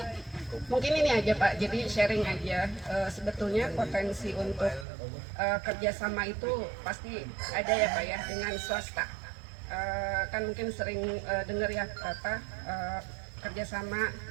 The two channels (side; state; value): left; drops out; at 4.9 s